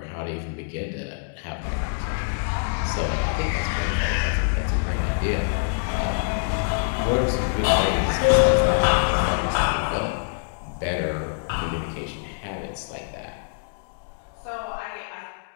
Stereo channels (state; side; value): silent; right; digital silence